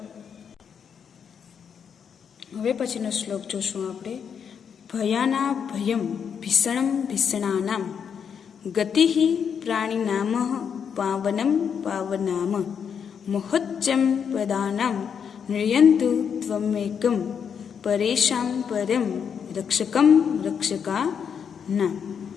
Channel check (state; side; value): quieter; right; 7.2 dB